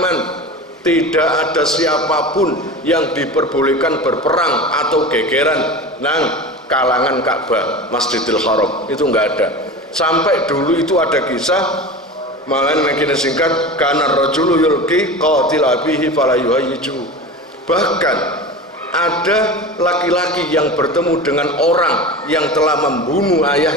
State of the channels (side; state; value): both; normal; correlation 0.31